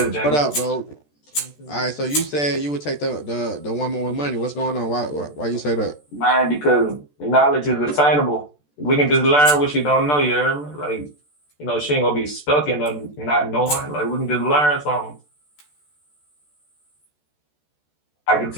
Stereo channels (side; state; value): right; late; 14 ms